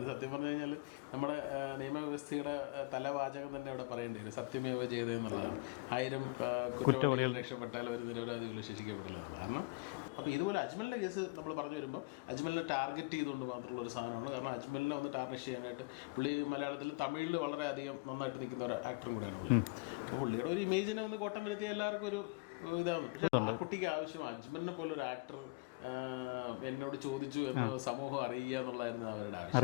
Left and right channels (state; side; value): quieter; right; 26.3 dB